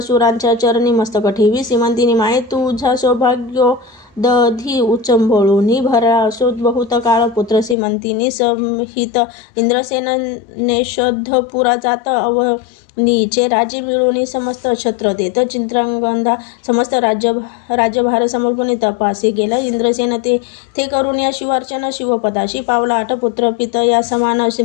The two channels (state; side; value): drops out; right; at 7.8 s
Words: चरणी मस्तक ठेवी श्रीमंतिनी माये तुझा सौभाग्य दधी उचंबळूनी भरा असो बहुत काळ पुत्र श्रीमंतिनी संहित इंद्रसेनेशोधपुरा जात नीचे राज्य मिळवणी समस्त छत्र देत चित्रांगंधा समस्त राज्यभार समर्पणी तपासी गेला इंद्रसेन ते करून या शिवार्चना शिवपदाशी पावला 8 पुत्र पित या समान